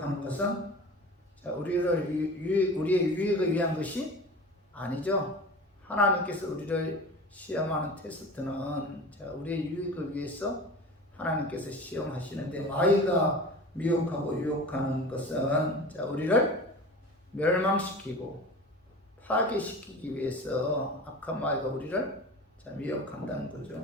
것은 우리의 유익을 위한 것이 아니죠. 하나님께서 우리를 시험하는 테스트는 우리의 유익을 위해서 하나님께서 시험하시는데 마귀가 미혹하고 유혹하는 것은 우리를 멸망시키고 파괴시키기 위해서 악한 마귀가 우리를 미혹한다는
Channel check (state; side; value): normal; both; correlation 0.36